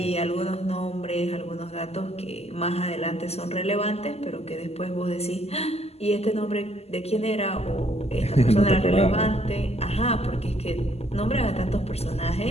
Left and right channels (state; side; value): late; right; 0.30 ms